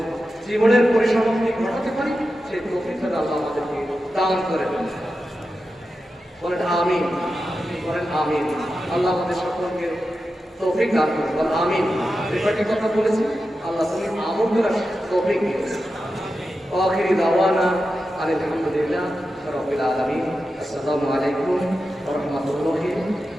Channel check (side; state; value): both; normal; correlation 0.91